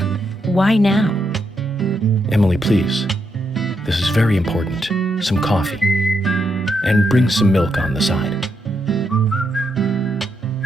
Why now? Emily, please. This is very important. Some coffee. And bring some milk on the side.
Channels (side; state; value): both; normal; correlation 0.80